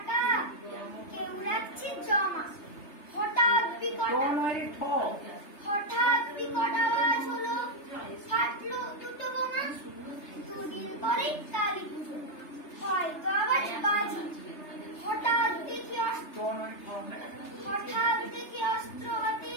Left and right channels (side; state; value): right; late; 3.3 ms